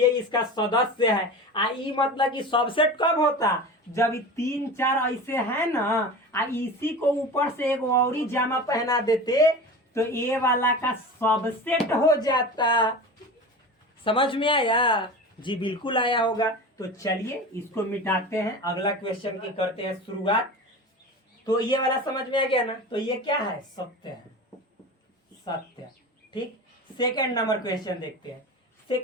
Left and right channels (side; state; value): both; normal; correlation 0.31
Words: इसका सदस्य है। ई मतलब कि सबसेट कब होता? जब 3 4 ऐसे है ना, इसी को ऊपर से एक और ही जामा पहना देते तो ए वाला का सबसेट हो जाता। समझ में आया जी? बिल्कुल आया होगा। तो चलिए इसको मिटाते हैं, अगला क्वेश्चन की करते हैं शुरुआत। तो ये वाला समझ में आ गया ना? तो ये क्या है? सत्य है, सत्य। ठीक, सेकंड नंबर क्वेश्चन देखते हैं।